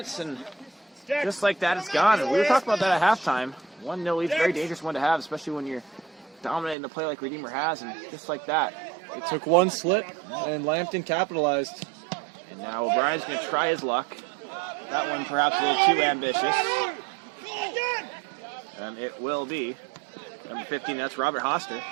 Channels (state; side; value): drops out; left; at 6.8 s